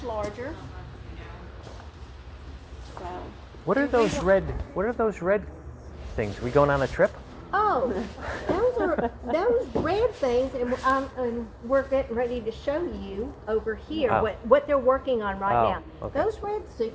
larger. So. What are those red? What are those red things? We going on a trip? Oh, those are those red things, and we're getting ready to show you over here Oh. what they're working on right Oh, now. okay. Those red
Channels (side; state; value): both; identical; correlation 1.00